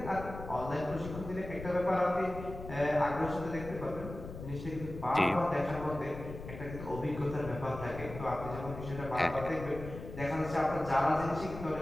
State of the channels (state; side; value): noise; left; rumble, 10 dB below the sound